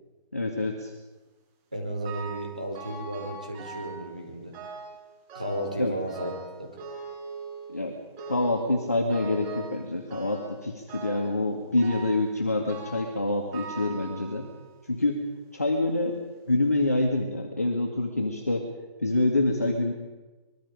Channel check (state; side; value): inverted; both; correlation -0.77